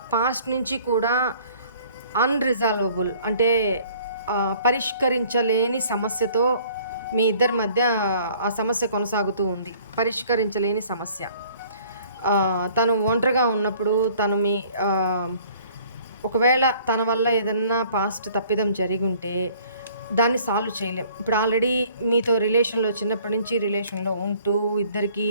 పాస్ట్ నుంచి కూడా అన్రిజాల్వబుల్, అంటే పరిష్కరించలేని సమస్యతో మీ ఇద్దరి మధ్య ఆ సమస్య కొనసాగుతూ ఉంది. పరిష్కరించలేని సమస్య. తను ఒంటరిగా ఉన్నప్పుడు తను ఒకవేళ తన వల్ల ఏదన్నా పాస్ట్ తప్పిదం జరిగుంటే దాన్ని సాల్వ్ చేయలేం. ఇప్పుడు ఆల్రెడీ మీతో రిలేషన్‌లో చిన్నప్పటి నుంచి రిలేషన్‌లో ఉంటూ ఇద్దరికీ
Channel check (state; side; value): inverted; both; correlation -0.55